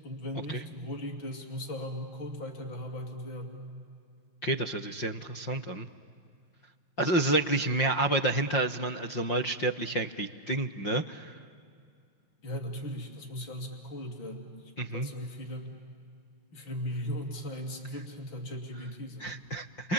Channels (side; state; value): right; late; 5.7 ms